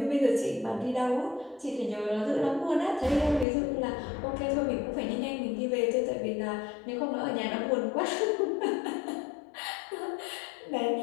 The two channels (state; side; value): drops out; right; at 3.5 s